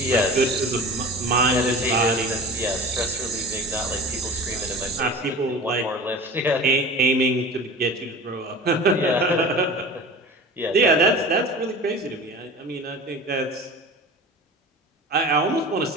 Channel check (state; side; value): normal; both; correlation 0.36